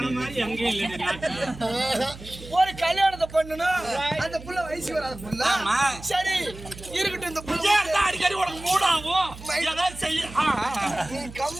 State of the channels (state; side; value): noise; right; hum, 15 dB below the sound